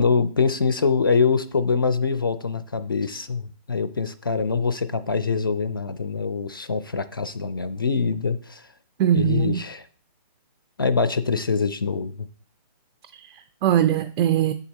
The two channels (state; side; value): inverted; both; correlation -0.56